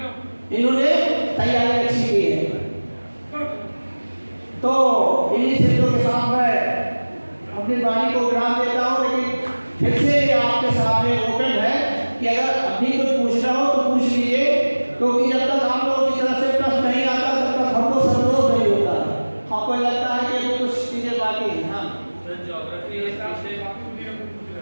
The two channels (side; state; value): both; inverted; correlation -1.00